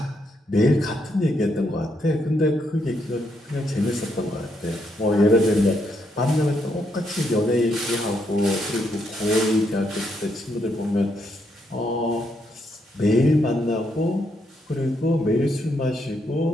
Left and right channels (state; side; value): normal; both; correlation 0.77